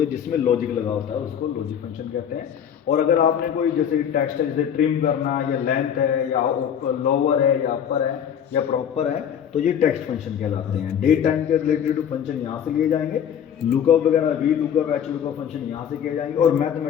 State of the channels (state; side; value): quieter; right; 8.6 dB